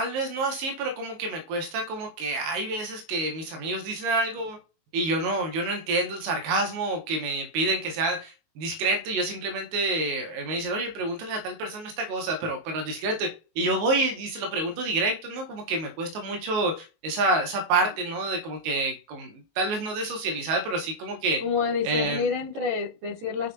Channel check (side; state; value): left; late; 19 ms